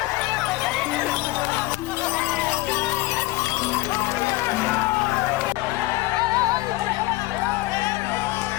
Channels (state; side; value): quieter; right; 18.9 dB